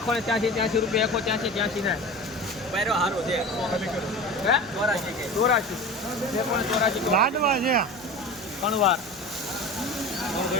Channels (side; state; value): left; noise; hum, 26 dB below the sound